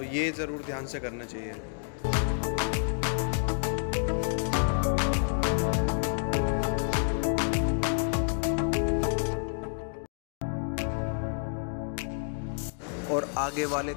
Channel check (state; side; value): silent; right; digital silence